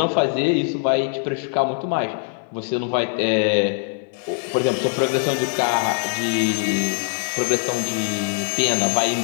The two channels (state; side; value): silent; right; digital silence